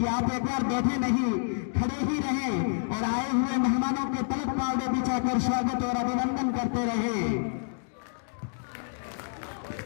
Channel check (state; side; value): silent; right; digital silence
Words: आप एक बार बैठे नहीं, खड़े ही रहें और आए हुए मेहमानों के तलक पावड़े बिछाकर स्वागत और अभिनंदन करते रहे।